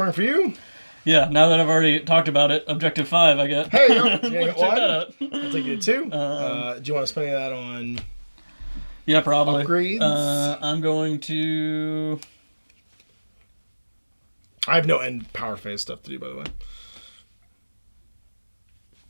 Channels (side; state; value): both; inverted; correlation -1.00